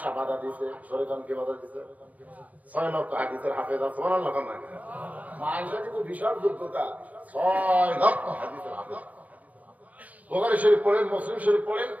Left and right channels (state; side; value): late; left; 0.072 ms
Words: বাধা দিছে। শরীয়ত কে বাধা দিছে? 6 লক্ষ হাদিসের হাফেজা। সুবহানাল্লাহ। মা আয়েশা কিন্তু বিশাল যোগ্যতা, 6 লক্ষ হাদিসের হাফেজা। বুখারী শরীফ পড়েন, মুসলিম শরীফ পড়েন,